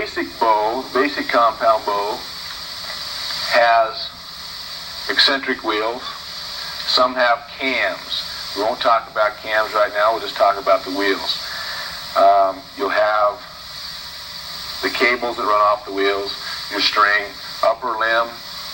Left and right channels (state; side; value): identical; both; correlation 1.00